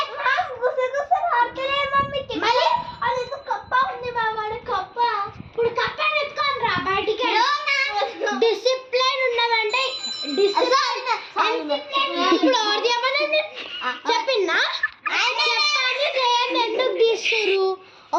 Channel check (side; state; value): both; identical; correlation 1.00